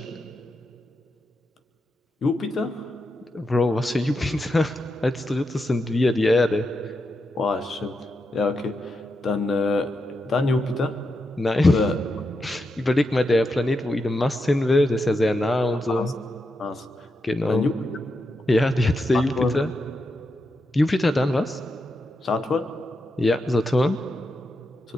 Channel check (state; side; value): normal; both; correlation 0.86